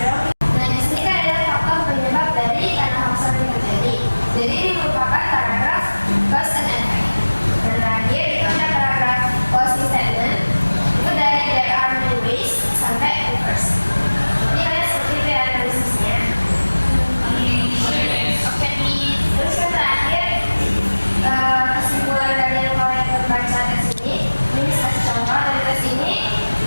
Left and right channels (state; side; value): inverted; both; correlation -1.00